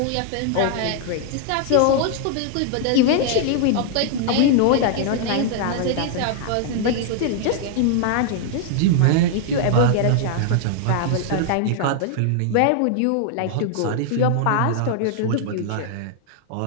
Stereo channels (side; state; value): both; different; correlation 0.00